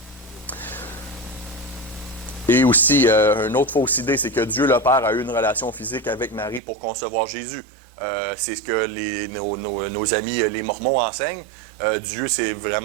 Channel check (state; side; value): drops out; left; at 6.6 s